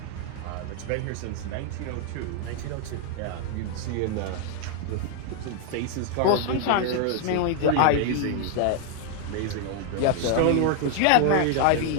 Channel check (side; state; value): both; different; correlation 0.00